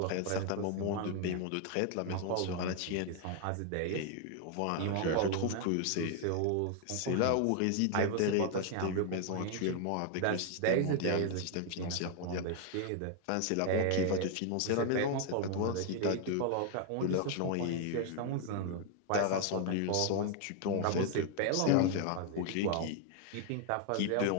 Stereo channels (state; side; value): different; both; correlation 0.00